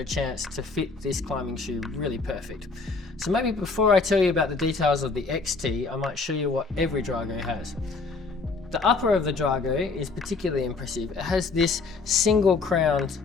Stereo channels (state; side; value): quieter; right; 4.1 dB